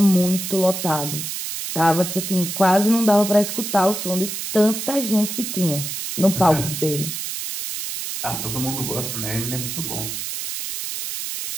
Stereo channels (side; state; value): right; noise; hiss, 5 dB below the sound